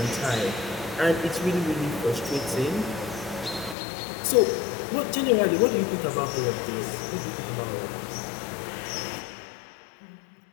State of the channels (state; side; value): drops out; right; at 3.8 s